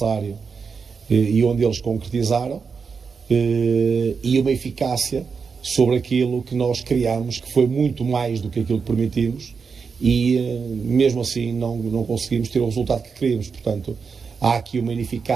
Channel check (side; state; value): left; quieter; 5.5 dB